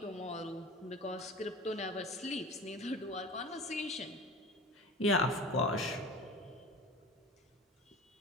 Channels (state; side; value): normal; both; correlation 0.36